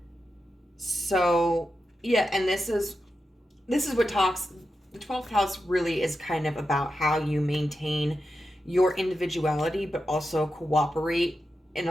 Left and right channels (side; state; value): both; normal; correlation 0.89